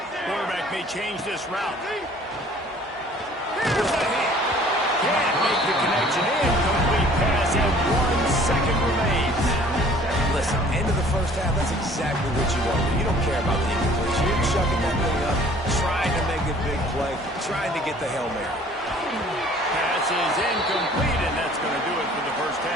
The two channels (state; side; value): normal; both; correlation 0.53